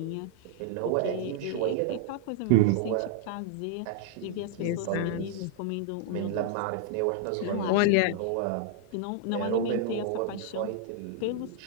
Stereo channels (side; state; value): both; different; correlation -0.01